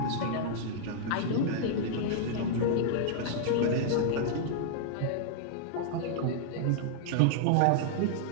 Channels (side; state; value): both; different; correlation -0.01